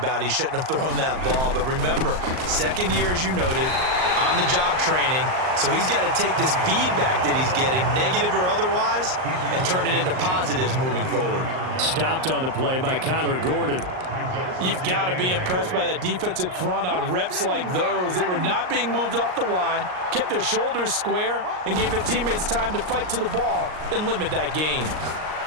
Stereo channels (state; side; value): late; left; 38 ms